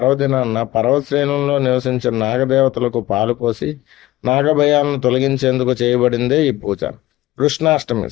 పర్వతశ్రేణుల్లో నివసించే నాగదేవతలకు పాలు పోసి నాగభయాలను తొలగించేందుకు చేయబడిందే ఈ పూజ. కృష్ణాష్టమి.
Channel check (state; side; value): quieter; right; 16.9 dB